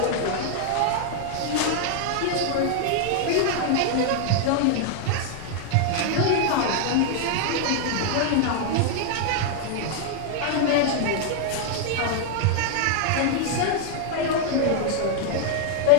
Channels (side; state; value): both; different; correlation 0.00